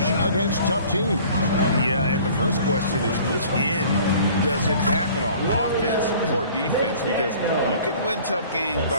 against tough teams. Yeah, and the first question is which end does it happen on, offense or defense? Because you can win tough games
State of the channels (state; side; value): inverted; both; correlation -0.50